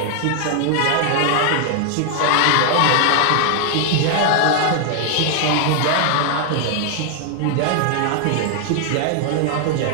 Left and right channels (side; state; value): both; different; correlation 0.00